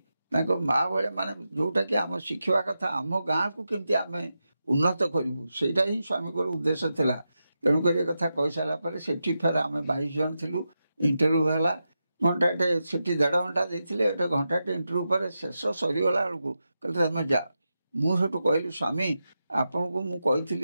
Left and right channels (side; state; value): both; inverted; correlation -0.89